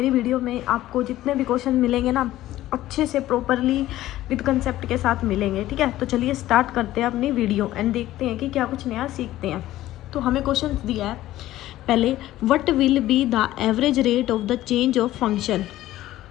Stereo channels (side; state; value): right; quieter; 14.9 dB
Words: वीडियो में आपको जितने भी क्वेश्चन मिलेंगे ना, अच्छे से प्रॉपरली विद कंसेप्ट के साथ मिलेंगे, ठीक है। तो चलिए स्टार्ट करते हैं अपनी वीडियो एंड देखते हैं कि क्या कुछ नया सीखते हैं। तो हमें क्वेश्चन दिया है पहले, what will be the average rate of the change of function.